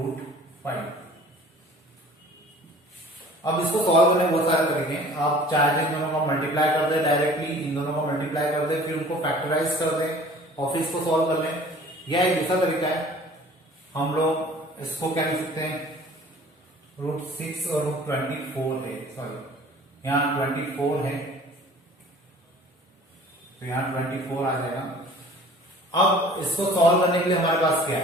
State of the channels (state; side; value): normal; both; correlation 0.48